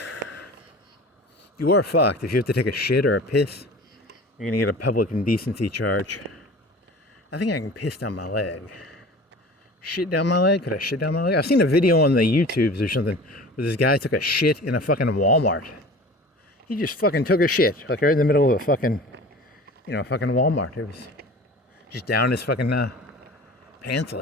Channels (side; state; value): both; normal; correlation 0.40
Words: You are fucked. If you have to take a shit or a piss, you're gonna get a public indecency charge. I think I can piss down my leg. Shit down my leg? Could I shit down my leg? I've seen a video on the YouTubes or something where this guy took a shit in a fucking Walmart. He just fucking took a shit, like right in the middle of a fucking, fucking Walmart. It was just down his fucking pants